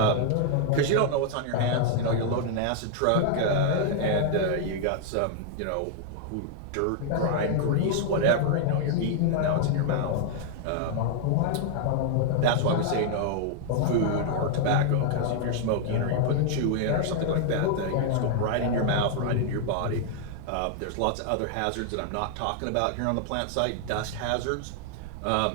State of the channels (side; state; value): both; different; correlation 0.00